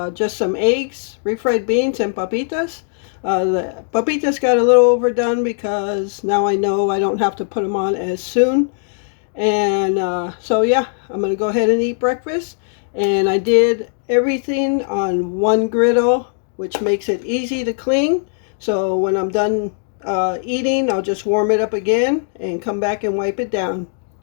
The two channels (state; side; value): silent; right; digital silence